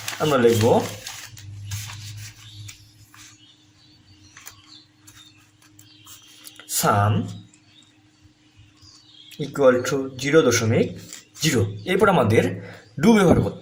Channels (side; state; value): both; identical; correlation 1.00